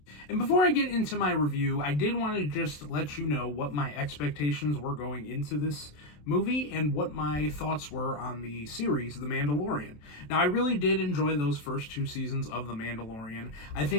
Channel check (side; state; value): right; late; 27 ms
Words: And before I get into my review, I did want to just let you know what my expectations were going into this movie and what my thoughts were on the series, The Mandalorian. Now, I really did enjoy those first two seasons of The Mandalorian. I